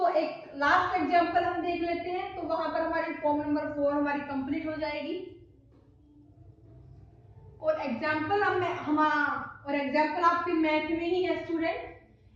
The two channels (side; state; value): both; identical; correlation 1.00